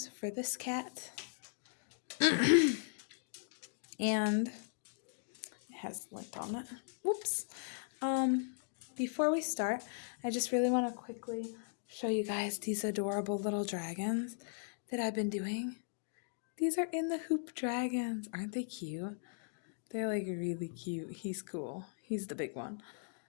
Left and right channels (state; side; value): silent; right; digital silence